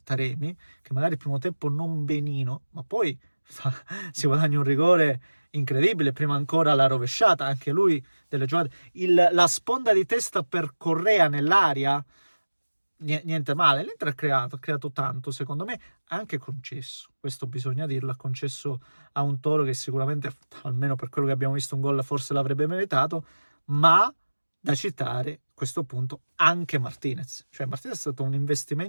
Taremi, che magari il primo tempo non benino, ma poi si guadagna un rigore incredibile, prima ancora la rovesciata, anche lui delle giocate, la sponda di testa per Correa nell'aria, niente male. L'Inter ha creato tanto, secondo me, anche concesso, questo bisogna dirlo, ha concesso a un Toro che sicuramente, almeno per quello che abbiamo visto, un gol forse l'avrebbe meritato, ma da citare a questo punto anche Martinez. Cioè Martinez è stato un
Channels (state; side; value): inverted; both; correlation -1.00